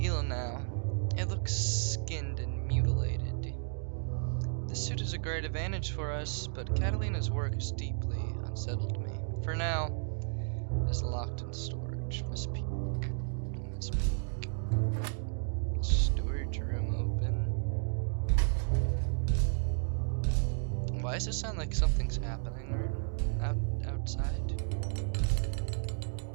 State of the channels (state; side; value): silent; left; digital silence